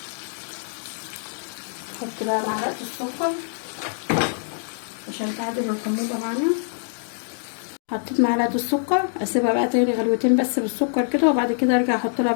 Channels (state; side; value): silent; right; 62 dB below the other